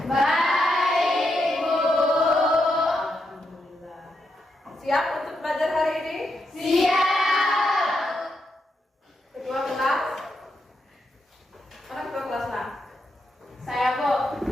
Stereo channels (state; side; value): normal; both; correlation 0.83